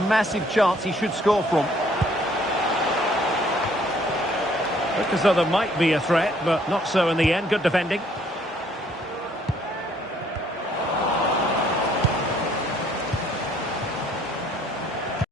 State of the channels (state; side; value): normal; both; correlation 0.63